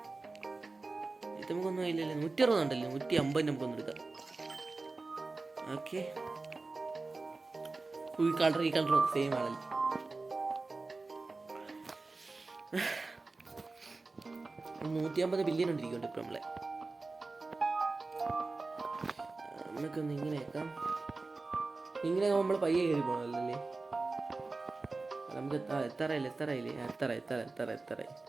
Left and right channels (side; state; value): left; quieter; 3.6 dB